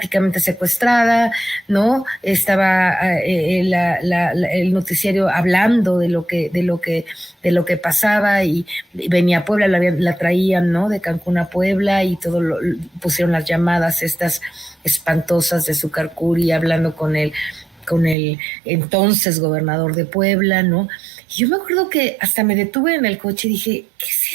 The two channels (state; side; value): drops out; left; at 18.2 s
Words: secuestrada, ¿no? Estaba el noticiario hablando de lo que pasaba, y venía a Puebla, la traían, ¿no? De Cancún a Puebla, y pusieron las llamadas estas espantosas de Zúcar Curi hablando con el entonces gobernador de Puebla, ¿no? Y yo me acuerdo que hasta me detuve en el coche y dije, ¿qué es